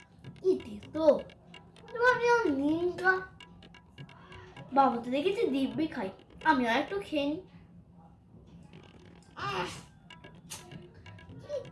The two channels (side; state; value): both; identical; correlation 1.00